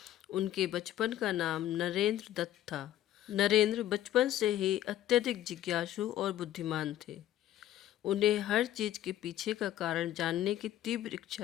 उनके बचपन का नाम नरेंद्र दत्त था। नरेंद्र बचपन से ही अत्यधिक जिज्ञासु और बुद्धिमान थे। उन्हें हर चीज़ के पीछे का कारण जानने की तीव्र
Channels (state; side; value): quieter; right; 13.0 dB